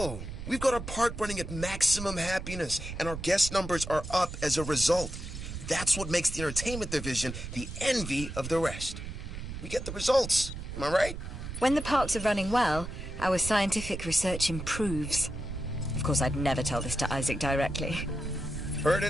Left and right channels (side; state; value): right; noise; rumble, 8 dB below the sound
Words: We've got our park running at maximum happiness, and our guest numbers are up as a result. That's what makes the entertainment division the envy of the rest. We get the results, am I right? When the parks are running well, our scientific research improves. Of course, I'd never tell this to Isaac directly. Heard